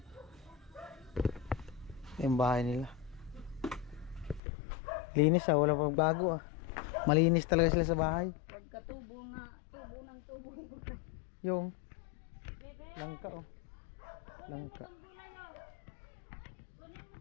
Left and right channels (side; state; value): right; drops out; at 4.4 s